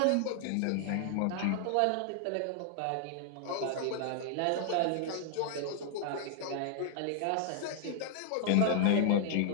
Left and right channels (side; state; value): both; different; correlation -0.01